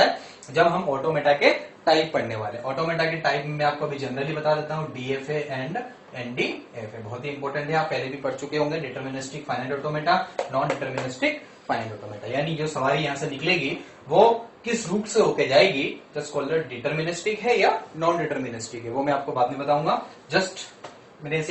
है जब हम ऑटोमेटा के टाइप पढ़ने वाले। ऑटोमेटा के टाइप में आपको अभी जनरली बता देता हूँ, डीएफए एंड एनडीएफए, बहुत ही इंपॉर्टेंट है, आप पहले भी पढ़ चुके होंगे। Deterministic finite automata, non deterministic finite automata, यानी जो सवारी यहाँ से निकलेगी वो किस रूट से होके जाएगी, जस्ट कॉल्ड डिटर्मिनिस्टिक है या नॉन डिटर्मिनिस्टिक है, वो मैं आपको बाद में बताऊंगा। जस्ट मैंने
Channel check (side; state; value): both; identical; correlation 1.00